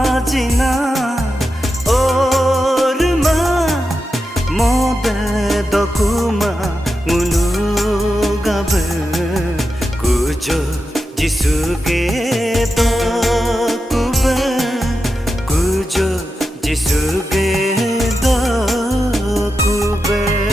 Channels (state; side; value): normal; both; correlation 0.89